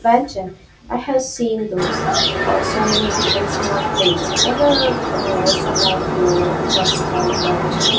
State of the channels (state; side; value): identical; both; correlation 1.00